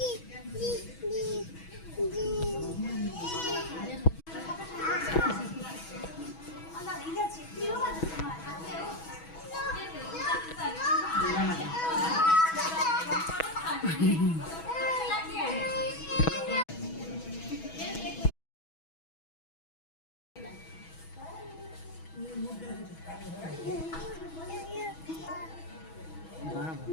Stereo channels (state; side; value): late; right; 6.2 ms